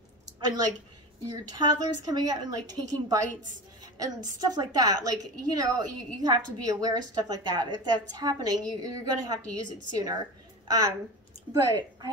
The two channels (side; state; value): both; normal; correlation 0.30